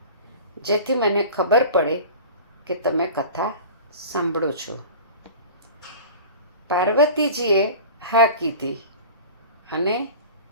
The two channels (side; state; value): both; inverted; correlation -0.37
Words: જેથી મને ખબર પડે કે તમે કથા સાંભળો છો. પાર્વતીજીએ હા કીધી અને